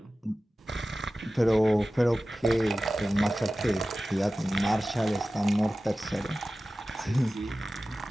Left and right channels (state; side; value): normal; both; correlation 0.96